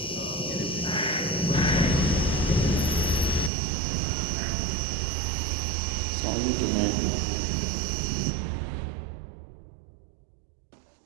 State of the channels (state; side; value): drops out; left; at 3.5 s